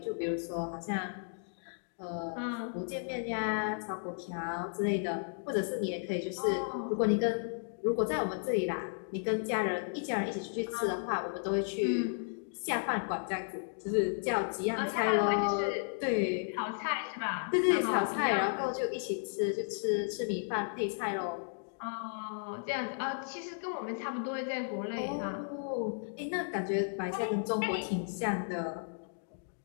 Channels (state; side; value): silent; right; digital silence